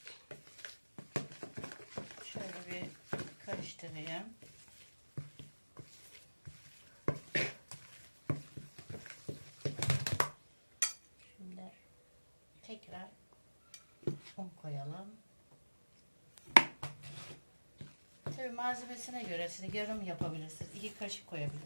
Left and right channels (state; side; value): inverted; both; correlation -1.00